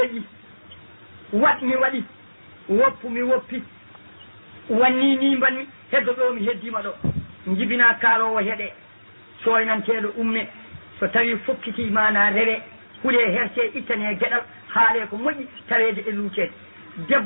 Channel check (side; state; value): both; inverted; correlation -1.00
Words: watmi waɗi woppumi woppi wanni ni mbanmi heddo ɗo mi heddima ɗo jibina kaalowo heeɗe soynanteɗo umme so tawi fokkiti mana rewe huule herse ittane gueɗal haale ko moƴƴi tawede e luucede